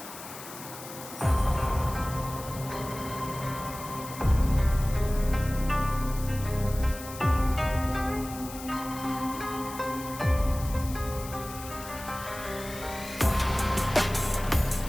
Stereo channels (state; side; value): noise; left; hiss, 13 dB below the sound